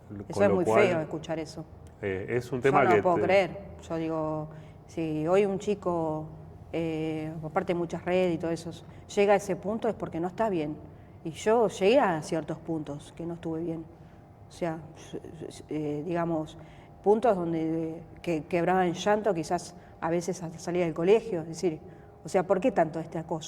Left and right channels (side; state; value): both; identical; correlation 1.00